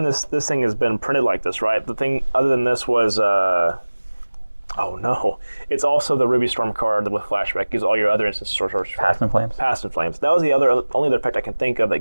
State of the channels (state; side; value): inverted; both; correlation -1.00